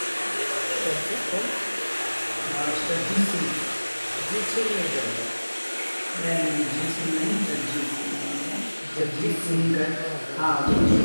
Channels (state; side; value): inverted; both; correlation -1.00